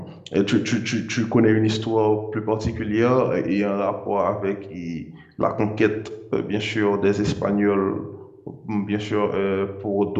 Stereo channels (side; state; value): both; identical; correlation 1.00